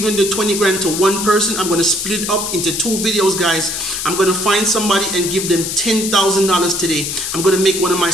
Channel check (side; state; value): left; noise; hiss, 4 dB below the sound